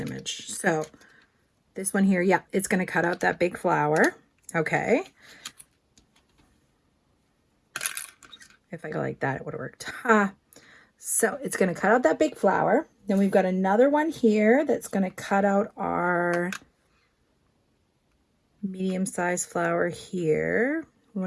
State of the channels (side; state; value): both; identical; correlation 1.00